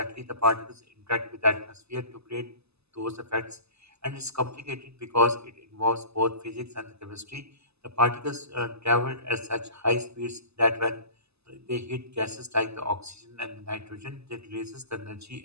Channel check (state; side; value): late; left; 0.79 ms